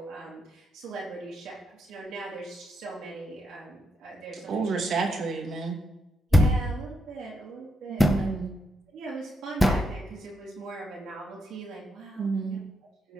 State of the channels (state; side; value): normal; both; correlation 0.80